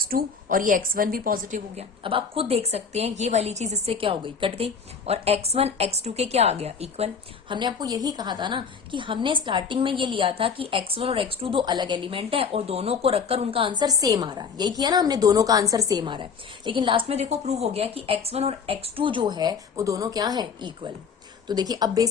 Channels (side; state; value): right; quieter; 5.9 dB